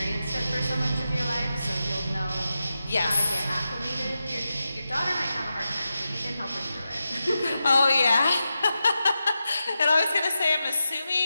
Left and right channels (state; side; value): inverted; both; correlation -0.90